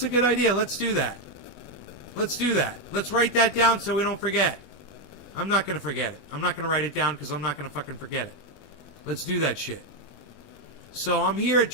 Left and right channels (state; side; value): late; right; 21 ms